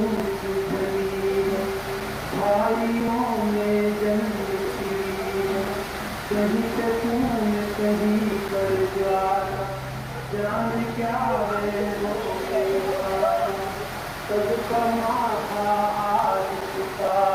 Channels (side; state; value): both; identical; correlation 1.00